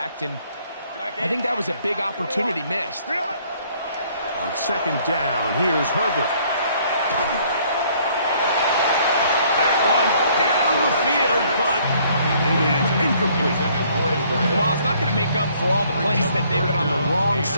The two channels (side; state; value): both; inverted; correlation -0.62